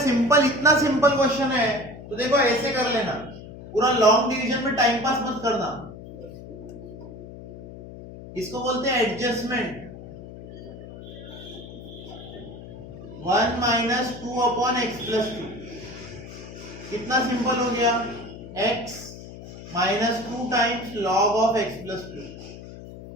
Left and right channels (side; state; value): left; noise; hum, 14 dB below the sound